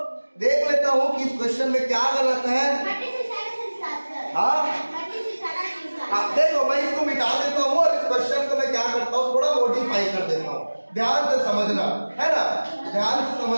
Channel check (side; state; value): both; inverted; correlation -1.00